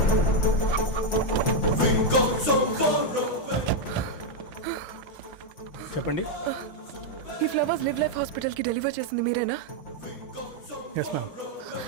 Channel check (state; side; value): late; right; 5.8 ms